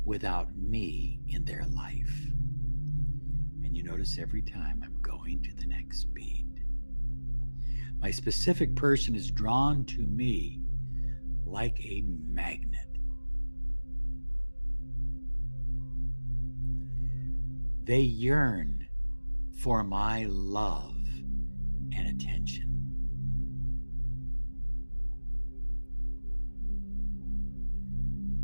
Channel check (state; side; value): inverted; both; correlation -1.00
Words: without me in their life. And you notice every time I'm going to the next beat, my specific person is drawn to me like a magnet. They yearn for my love and attention.